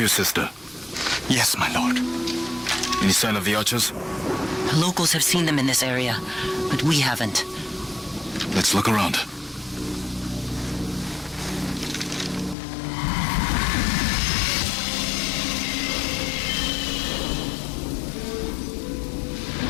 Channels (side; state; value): right; drops out; at 12.6 s